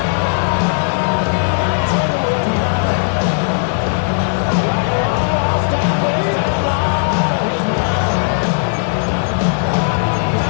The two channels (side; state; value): right; silent; 69 dB below the other